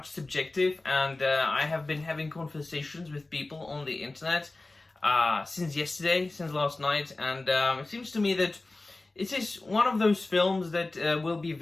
subjective and I have been having conversations with people on the internet since last night, and it seems to me that it is one of those films that will be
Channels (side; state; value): right; quieter; 3.1 dB